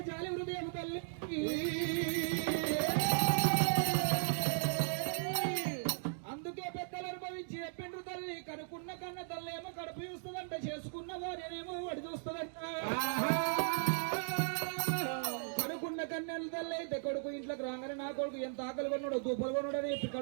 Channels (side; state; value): left; silent; digital silence